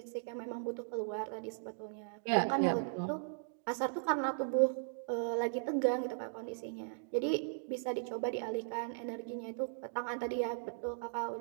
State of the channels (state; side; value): silent; left; digital silence